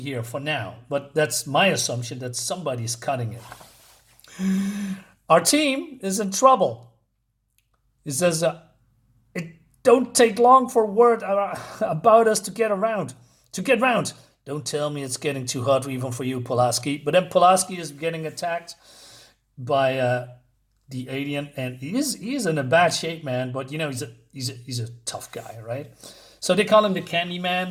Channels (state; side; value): identical; both; correlation 1.00